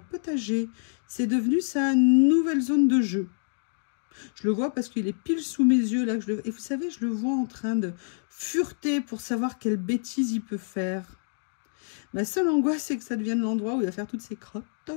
C'est devenu sa nouvelle zone de jeu. Je le vois parce qu'il est pile sous mes yeux là. Et vous savez, je le vois en train de fureter pour savoir quelle bêtise il peut faire. Ma seule angoisse, c'est que ça devienne l'endroit où il va faire toutes ses crottes.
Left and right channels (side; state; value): right; silent; digital silence